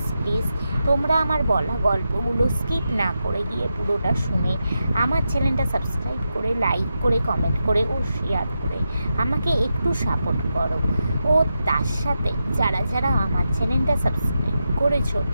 তোমরা আমার বলা গল্পগুলো স্কিপ না করে গিয়ে পুরোটা শুনে আমার চ্যানেলটা সাবস্ক্রাইব করে, লাইক করে, কমেন্ট করে ও শেয়ার করে আমাকে একটু সাপোর্ট করো। ও তার সাথে যারা আমার চ্যানেলটা সাবস্ক্রাইব করেছো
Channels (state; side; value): inverted; both; correlation -0.88